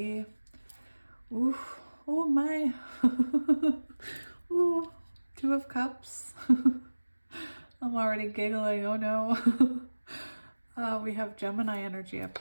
Ooh, oh my. Ooh, Two of Cups. I'm already giggling, oh no. We have Gemini energy up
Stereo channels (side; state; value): both; inverted; correlation -1.00